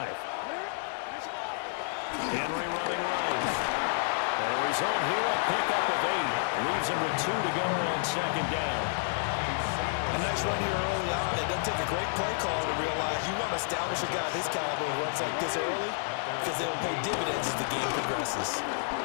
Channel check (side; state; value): right; silent; digital silence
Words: Henry running right. And the result here, a pickup of 8. Leaves him with 2 to go on second down. A nice run here early on. It doesn't take a great play call to realize you want to establish a guy of his caliber who runs like this early because they'll pay dividends as the game progresses.